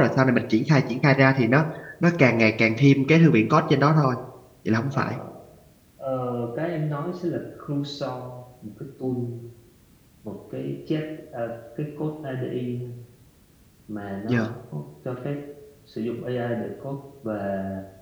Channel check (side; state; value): both; identical; correlation 1.00